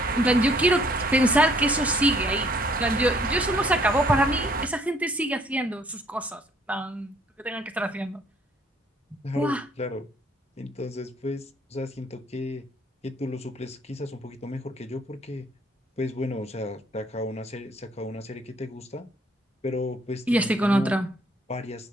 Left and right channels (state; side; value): normal; both; correlation 0.62